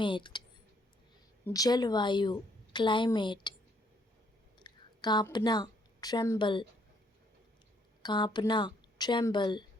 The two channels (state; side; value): normal; both; correlation 0.68